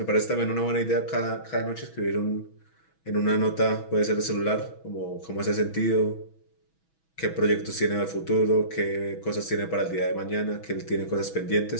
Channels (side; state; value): right; late; 6.2 ms